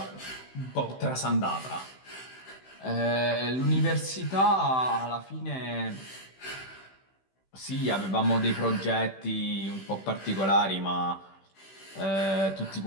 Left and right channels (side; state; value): right; late; 16 ms